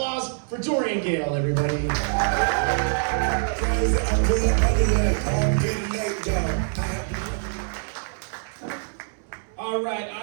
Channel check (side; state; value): left; silent; 62 dB below the other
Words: for Dorian Gayle, everybody. All right,